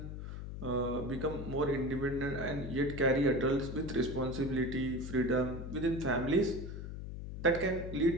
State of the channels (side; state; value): left; noise; hum, 8 dB below the sound